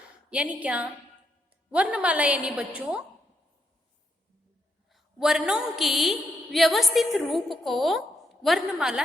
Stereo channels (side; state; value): both; normal; correlation 0.78